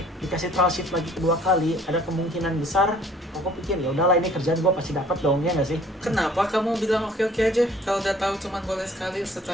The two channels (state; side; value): normal; both; correlation 0.55